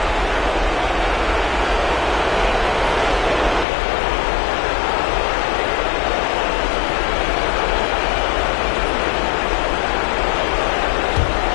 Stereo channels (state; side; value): drops out; right; at 3.7 s